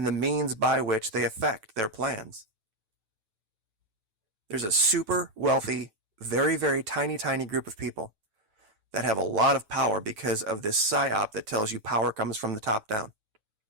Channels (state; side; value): late; left; 9.1 ms